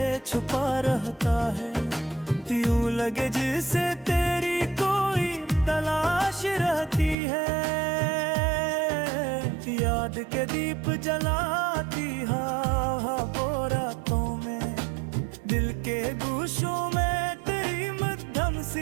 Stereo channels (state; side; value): drops out; left; at 7.2 s